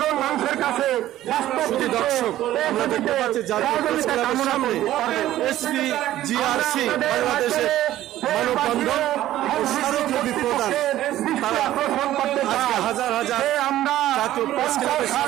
মানুষের কাছে বাস্তব দর্শক আমরা দেখতে পাচ্ছি SPGRC বাংলাদেশের মানববন্ধন ও স্মারকলিপি প্রদান তারা আজকে হাজার হাজার জাতীয় প্রেস ক্লাবের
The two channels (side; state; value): left; quieter; 13.8 dB